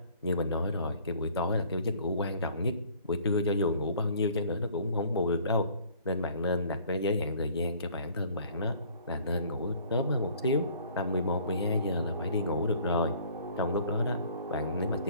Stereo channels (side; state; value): both; inverted; correlation -0.55